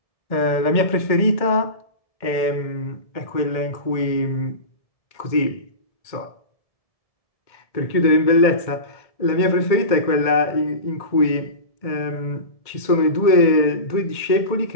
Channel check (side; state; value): right; late; 2.1 ms